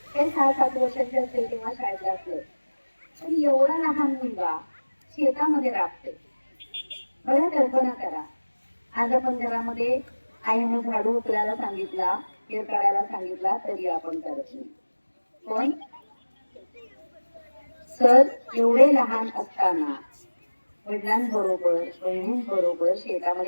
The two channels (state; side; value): inverted; both; correlation -1.00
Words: ते 6-7 वर्षाचे असेल तेव्हा शाळेत असलं, पण एवढा लहान मुलगा शेतामध्ये राबते. बघा, कल्पना करा, आज आपण घरामध्ये आईने झाडू उचलायला सांगितला, केर काढायला सांगितला, तरी आपण करत नाही. पण सर एवढे लहान असताना वडिलांबरोबर बहिणींबरोबर